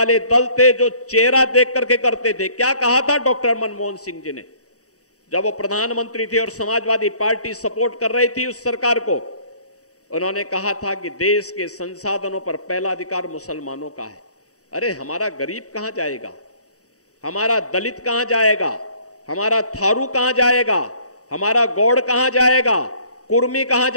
दल थे, जो चेहरा देख करके करते थे। क्या कहा था डॉक्टर मनमोहन सिंह जी ने जब वो प्रधानमंत्री थे और समाजवादी पार्टी सपोर्ट कर रही थी उस सरकार को? उन्होंने कहा था कि देश के संसाधनों पर पहला अधिकार मुसलमानों का है। अरे हमारा गरीब कहां जाएगा? हमारा दलित कहां जाएगा? हमारा थारू कहां जाएगा? हमारा गौड़ कहां जाएगा? कुर्मी कहां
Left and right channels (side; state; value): right; late; 0.66 ms